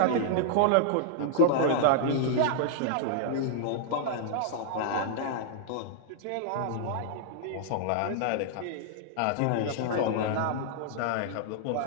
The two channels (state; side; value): different; both; correlation -0.01